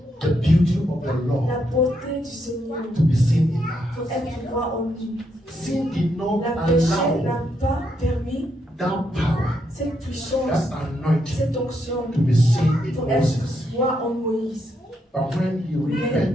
the beauty of the la Lord beauté du Seigneur to be seen in pour us. être droit en lui. Sin did not La péché allow n'a pas permis that power, cette puissance, that anointing cette onction to be seen in pour Moses. être droit en Moïse. But when he Mais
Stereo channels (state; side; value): normal; both; correlation 0.79